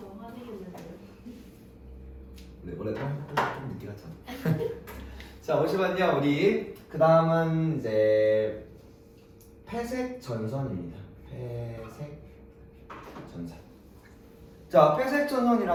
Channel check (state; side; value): identical; both; correlation 1.00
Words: 너무 화내겠는데요. 네, 원래 좀 늦게 갔잖아. 자, 보시면요, 우리 그 다음은 이제 회색 전선입니다. 회색 전선. 자, 회색